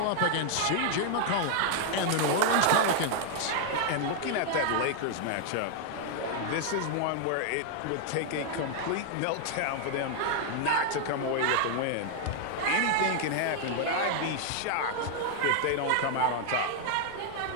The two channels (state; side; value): different; both; correlation 0.00